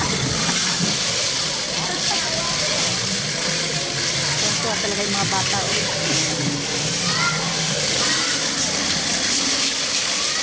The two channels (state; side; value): identical; both; correlation 1.00